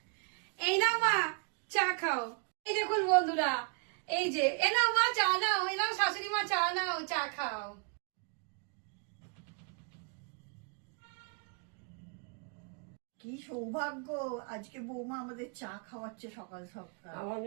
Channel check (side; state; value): left; quieter; 37.0 dB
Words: এই নাও মা, চা খাও। এই দেখুন বন্ধুরা, এই যে এ নাও মা, চা নাও, এ নাও শাশুড়ি মা, চা নাও, চা খাও। কি সৌভাগ্য, আজকে বৌমা আমাদের চা খাওয়াচ্ছে সকাল সকাল। আমার